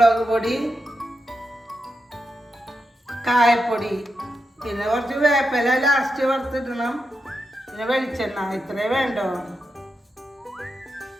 പൊടി, കായപ്പൊടി, പിന്നെ കുറച്ച് വേപ്പില ലാസ്റ്റ് വറുത്തിടണം, പിന്നെ വെളിച്ചെണ്ണ. ഇത്രേ വേണ്ടോ.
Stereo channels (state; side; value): normal; both; correlation 0.87